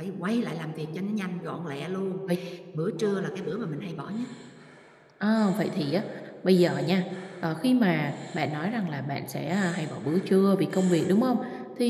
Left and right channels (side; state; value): both; identical; correlation 1.00